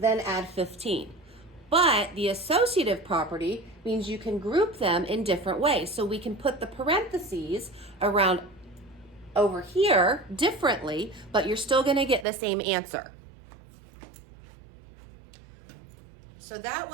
add 15. But the associative property means you can group them in different ways. So we can put the parentheses around over here differently, but you're still going to get the same answer. So that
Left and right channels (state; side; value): drops out; left; at 12.2 s